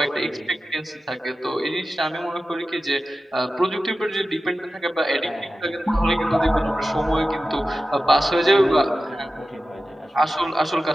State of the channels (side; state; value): both; normal; correlation 0.94